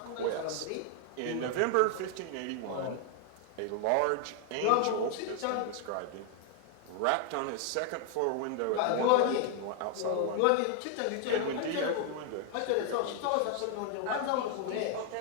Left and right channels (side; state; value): both; different; correlation 0.00